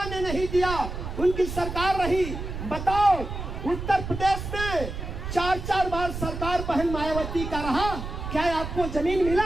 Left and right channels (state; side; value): noise; right; rumble, 7 dB below the sound